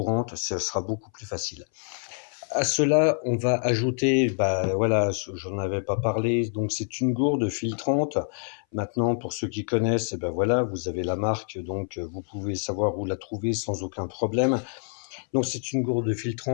ce sera beaucoup plus facile. À cela, on va ajouter, bah voilà, j'en avais pas parlé, donc c'est une gourde filtrante. Maintenant, pour ceux qui connaissent, eh ben voilà, vous avez la marque, donc vous pouvez savoir où la trouver sans aucun problème. Donc c'est une gourde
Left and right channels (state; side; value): silent; right; 60 dB below the other